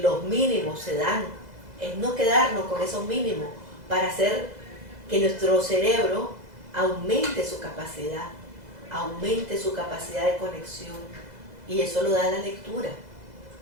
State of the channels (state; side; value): late; left; 2.0 ms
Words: mínimos se dan, es no quedarnos con esos mínimos para hacer que nuestro cerebro aumente su capacidad de conexión, y eso lo da la lectura.